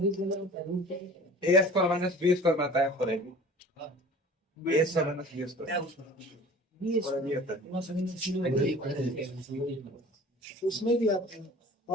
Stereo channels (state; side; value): normal; both; correlation 0.44